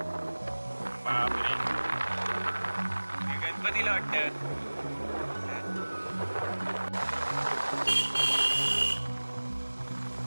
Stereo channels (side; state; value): both; inverted; correlation -1.00